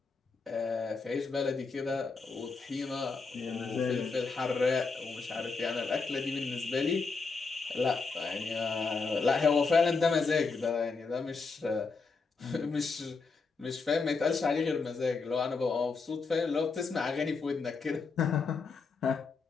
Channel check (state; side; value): quieter; right; 4.5 dB